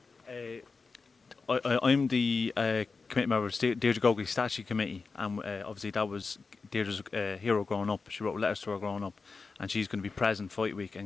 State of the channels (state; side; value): quieter; right; 4.5 dB